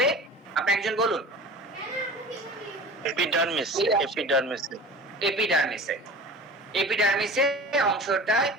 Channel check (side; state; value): both; normal; correlation 0.39